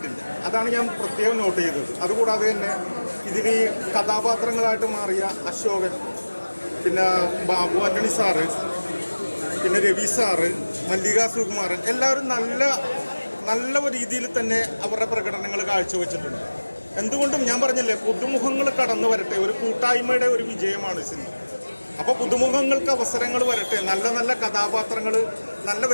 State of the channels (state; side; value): inverted; both; correlation -1.00